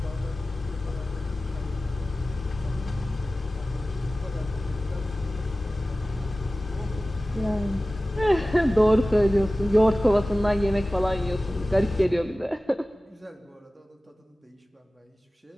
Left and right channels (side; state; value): both; normal; correlation 0.96